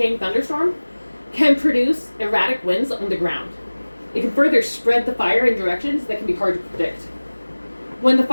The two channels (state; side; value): inverted; both; correlation -1.00